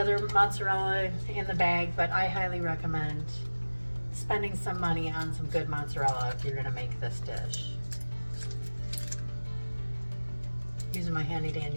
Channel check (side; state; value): both; inverted; correlation -1.00